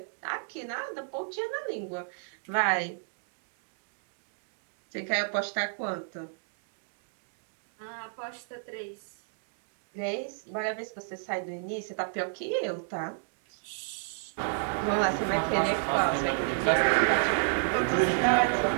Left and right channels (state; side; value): silent; left; digital silence